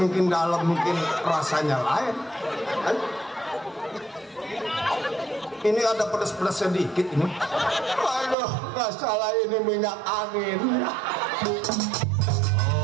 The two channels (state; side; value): drops out; left; at 8.3 s